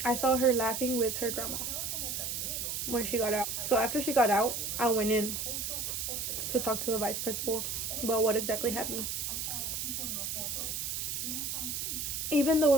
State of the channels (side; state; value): right; noise; hiss, 2 dB below the sound